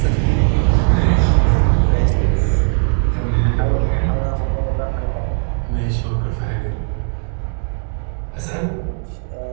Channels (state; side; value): silent; left; 57 dB below the other